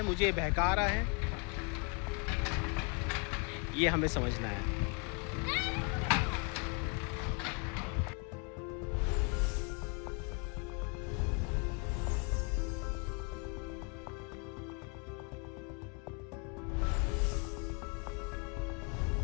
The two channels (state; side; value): quieter; right; 33.3 dB